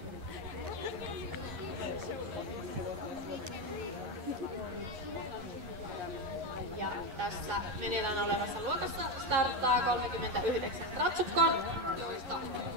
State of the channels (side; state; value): left; late; 11 ms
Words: Ja tässä meneillään olevassa luokassa starttaa 39 ratsukkoa, joista